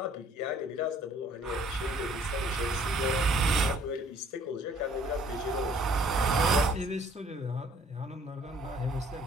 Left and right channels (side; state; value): both; normal; correlation 0.59